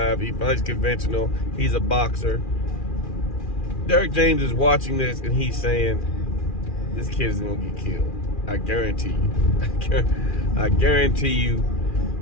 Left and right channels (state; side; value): late; right; 2.4 ms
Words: He fights conventional. He's a boxer. Derrick James is watching this and he's saying, this kid is going to get killed. I guarantee you. I guarantee you